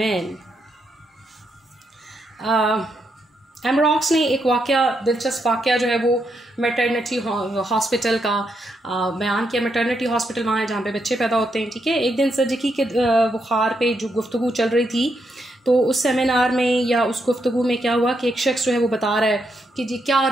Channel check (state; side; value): normal; both; correlation 0.80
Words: एमरॉक्स ने एक दिलचस्प वाक़या जो है वो मैटरनिटी हॉस्पिटल का बयान किया। मैटरनिटी हॉस्पिटल वहाँ है जहाँ पे बच्चे पैदा होते हैं, ठीक है। एक दिन सर्जिकी के बुखार पे जो गुफ्तगू चल रही थी, तो उस सेमिनार में या उस गुफ्तगू में क्या हुआ कि एक शख्स जो है वो बता रहा है कि जी क्या